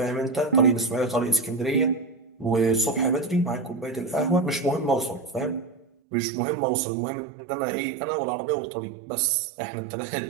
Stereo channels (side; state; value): left; drops out; at 5.9 s